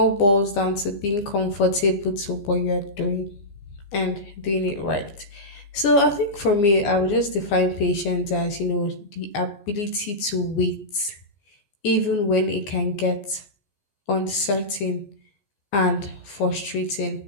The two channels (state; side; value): late; right; 14 ms